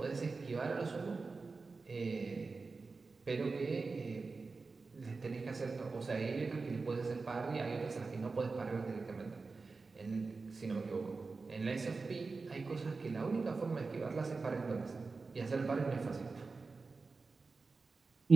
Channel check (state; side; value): quieter; left; 4.1 dB